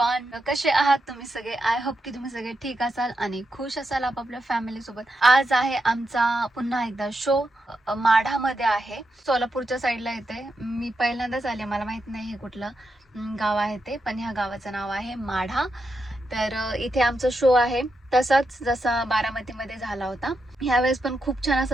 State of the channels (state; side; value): normal; both; correlation 0.85